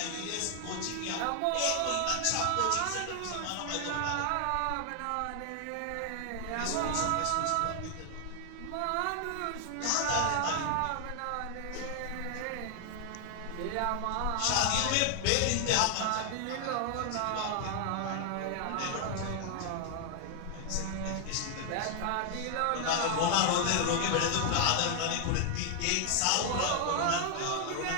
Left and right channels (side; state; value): both; different; correlation 0.00